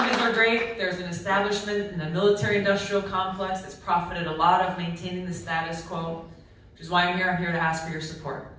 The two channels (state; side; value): identical; both; correlation 1.00